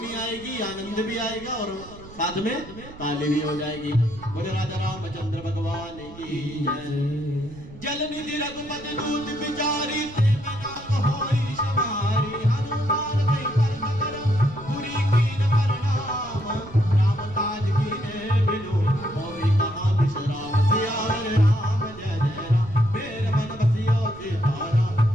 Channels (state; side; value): noise; right; rumble, 17 dB below the sound